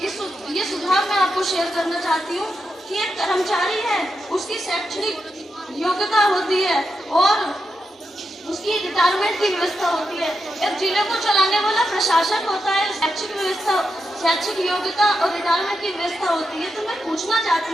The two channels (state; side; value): normal; both; correlation 0.86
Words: ये सुझाव मैं आपको शेयर करना चाहती हूँ कि एक कर्मचारी है, उसकी शैक्षणिक योग्यता होती है और उसकी रिटायरमेंट की व्यवस्था होती है। एक जिले को चलाने वाला प्रशासक होता है, शैक्षिक योग्यता और रिटायरमेंट की व्यवस्था होती है। तो मैं पूछना